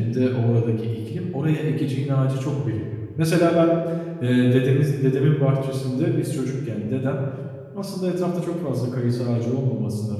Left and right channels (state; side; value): identical; both; correlation 1.00